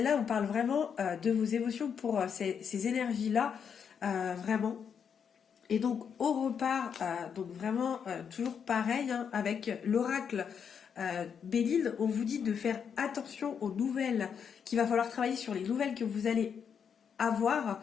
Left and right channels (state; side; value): quieter; right; 7.2 dB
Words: on parle vraiment de vos émotions pour ces énergies-là, vraiment. Et donc on repart, donc vraiment toujours pareil, hein, avec l'oracle Béline, on vous dit de faire attention aux nouvelles, qu'il va falloir travailler sur les nouvelles que vous allez avoir,